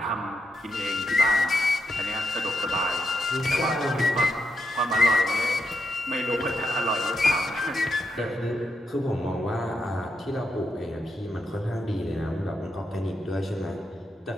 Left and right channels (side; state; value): both; normal; correlation 0.82